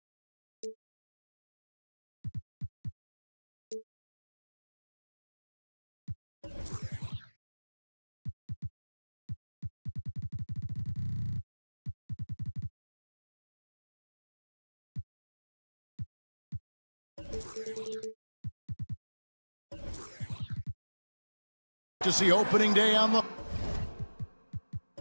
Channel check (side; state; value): both; inverted; correlation -1.00